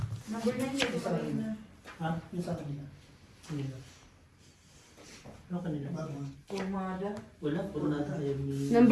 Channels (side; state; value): both; identical; correlation 1.00